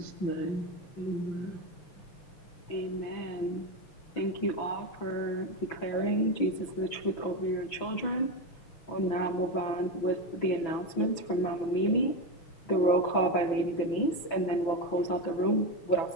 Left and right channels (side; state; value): right; late; 6.0 ms